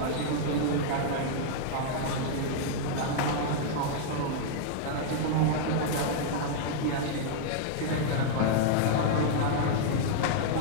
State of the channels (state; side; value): different; both; correlation -0.01